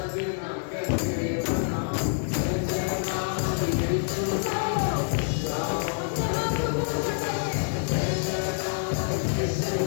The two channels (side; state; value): right; silent; digital silence